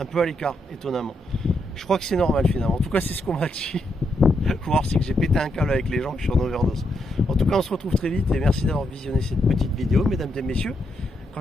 peu à l'écart, étonnamment. Je crois que c'est normal finalement. En tout cas, c'est ce qu'on m'a dit. Faut voir si que j'ai pété un câble avec les gens, que je suis en overdose. En tout cas, on se retrouve très vite et merci d'avoir visionné cette petite vidéo, mesdames et messieurs.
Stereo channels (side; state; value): both; normal; correlation 0.80